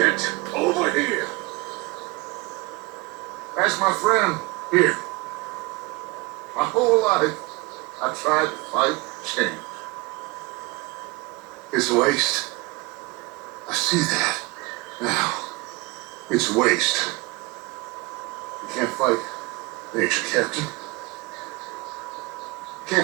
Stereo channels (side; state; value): left; quieter; 23.9 dB